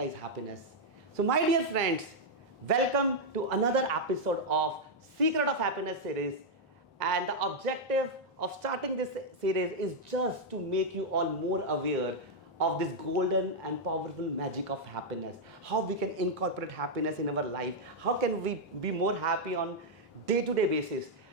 happiness? So my dear friends, welcome to another episode of Secret of Happiness series. And the objective of starting this series is just to make you all more aware of this golden and powerful magic of happiness. How we can incorporate happiness in our life. How can we be more happy on day-to-day basis.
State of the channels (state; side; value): normal; both; correlation -0.03